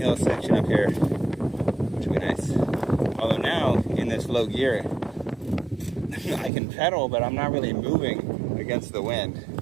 section up here, which will be nice. Although now, in this low gear, I can pedal, but I'm not really moving against the wind.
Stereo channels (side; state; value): left; drops out; at 6.5 s